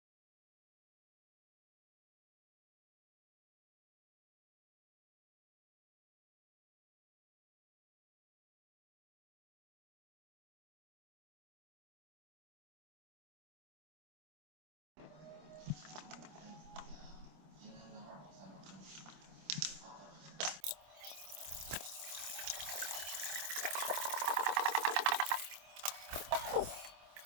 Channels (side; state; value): left; late; 26 ms